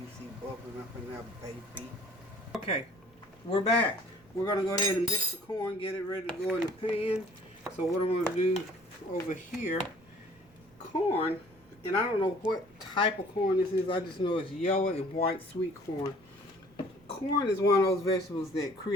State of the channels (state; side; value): noise; right; rumble, 29 dB below the sound